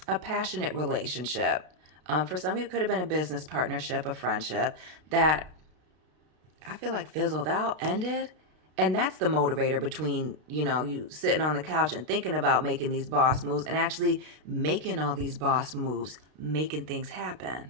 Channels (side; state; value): left; late; 32 ms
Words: A passionate relationship. For some of you, it could have been a business partnership, a friendship that I feel like fizzled out, ended. And that's the motivator between, you know, you sitting on the couch and thinking about making these boss moves and actually making all these boss moves, making things